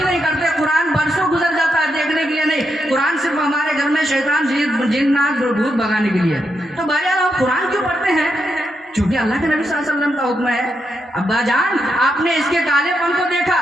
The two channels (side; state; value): both; normal; correlation 0.83